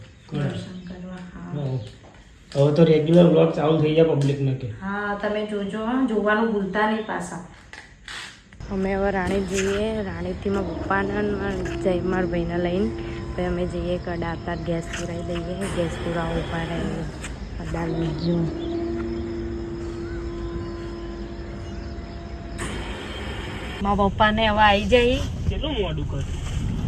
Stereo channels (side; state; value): both; identical; correlation 1.00